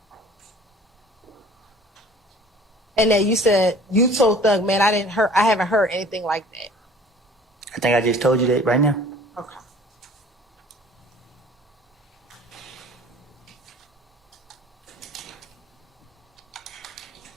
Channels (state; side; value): normal; both; correlation 0.49